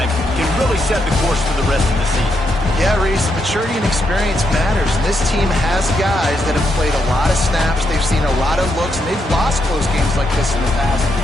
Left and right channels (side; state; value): both; normal; correlation 0.80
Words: can really set the course for the rest of the season. Yeah, Reese, maturity and experience matters. And this team has guys that have played a lot of snaps. They've seen a lot of looks, and they've lost close games like this in the past.